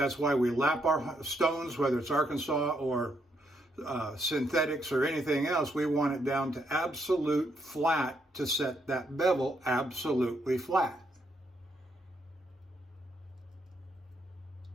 why we lap our stones, whether it's Arkansas or synthetics or anything else. We want it down to absolute flat to set that bevel absolutely flat.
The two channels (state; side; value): normal; both; correlation 0.76